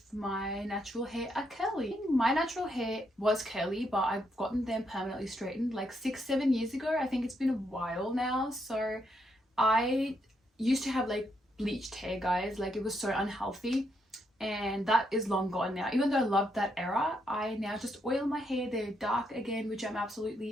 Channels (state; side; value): normal; both; correlation 0.77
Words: my natural hair are curly? My natural hair was curly, but I've gotten them permanently straightened like 6-7 years ago. I think it's been a while now. So I used to have like bleached hair, guys. Like, it was so unhealthy, and that is long gone now. Even though I loved that era, I now just oil my hair. They're dark again, which I'm